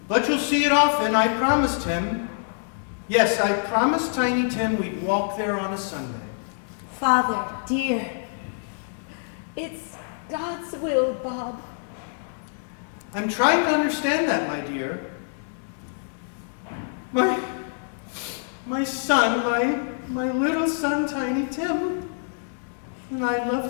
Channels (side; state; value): right; silent; digital silence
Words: But you'll see it often, I promised him. Yes, I promised Tiny Tim we'd walk there on a Sunday. Father, dear. It's God's will, Bob. I'm trying to understand that, my dear. My son, my little son, Tiny Tim. And I